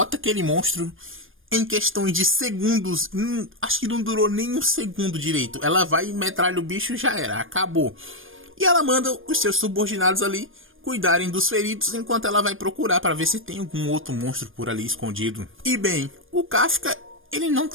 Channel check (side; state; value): left; late; 0.59 ms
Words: aquele monstro em questões de segundos. Acho que não durou nem um segundo direito. Ela vai e metralha o bicho, já era, acabou. E ela manda os seus subordinados ali cuidarem dos feridos, enquanto ela vai procurar para ver se tem algum outro monstro por ali escondido. E bem, o Kafka, ele não